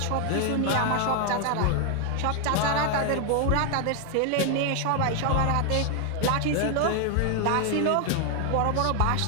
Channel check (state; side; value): different; both; correlation 0.00